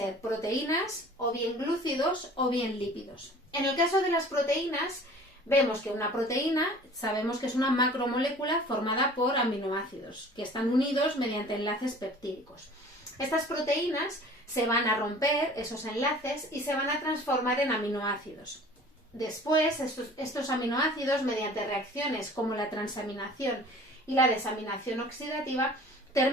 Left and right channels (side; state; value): both; normal; correlation 0.46